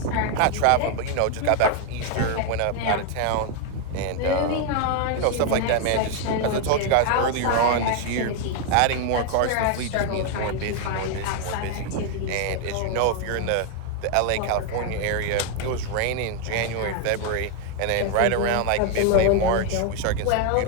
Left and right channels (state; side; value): different; both; correlation 0.01